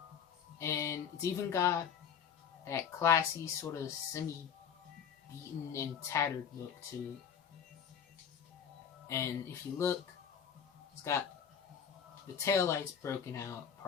And it's even got that classy, sort of semi-beaten and tattered look to it. And if you look, it's got the taillights broken out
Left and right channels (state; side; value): quieter; right; 7.7 dB